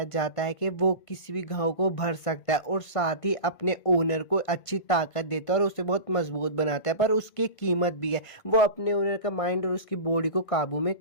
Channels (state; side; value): late; right; 1.9 ms